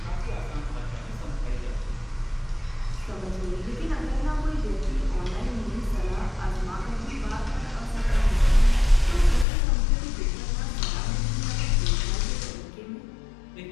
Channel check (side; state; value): right; drops out; at 9.5 s